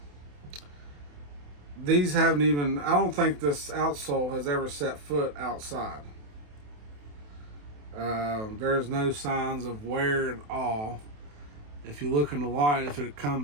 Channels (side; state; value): left; late; 28 ms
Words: These haven't even, I don't think this outsole has ever set foot outside. There's no signs of wear at all. If you look in the light, if it